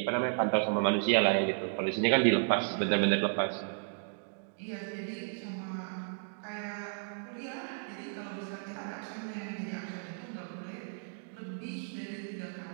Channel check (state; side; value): silent; left; digital silence